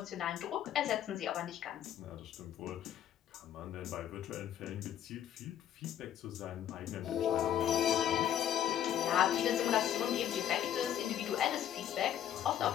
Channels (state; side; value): quieter; right; 10.6 dB